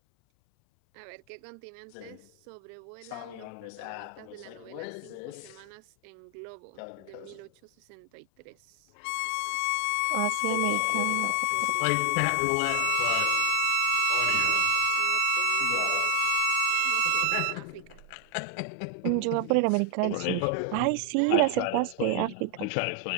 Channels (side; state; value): both; different; correlation 0.00